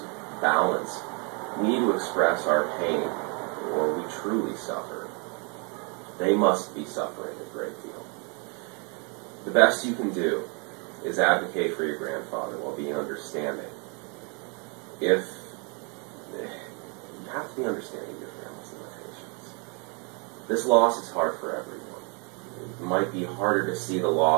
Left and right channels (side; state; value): left; quieter; 34.8 dB